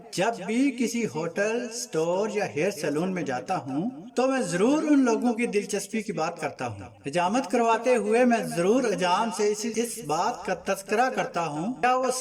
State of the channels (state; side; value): identical; both; correlation 1.00